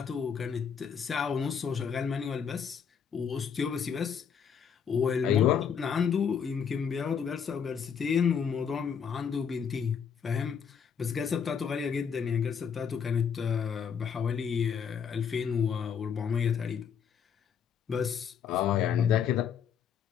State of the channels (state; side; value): quieter; right; 7.2 dB